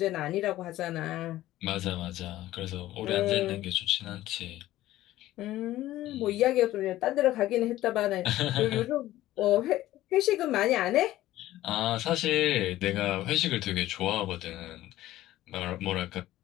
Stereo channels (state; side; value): quieter; right; 15.1 dB